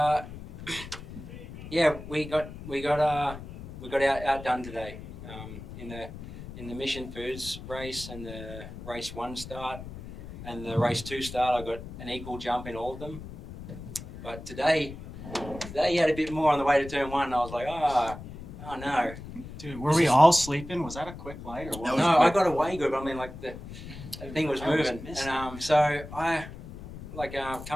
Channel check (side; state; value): left; noise; rumble, 12 dB below the sound